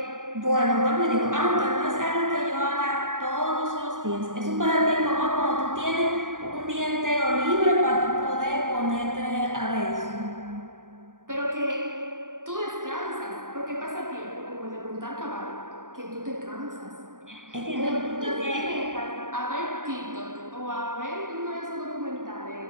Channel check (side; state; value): left; late; 0.89 ms